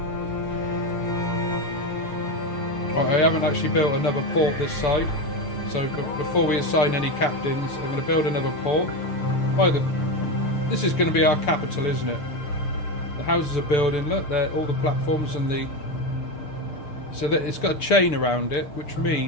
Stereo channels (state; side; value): late; right; 6.6 ms